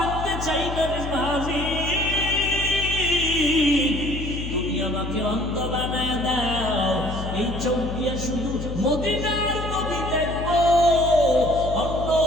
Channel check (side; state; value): left; noise; hum, 6 dB below the sound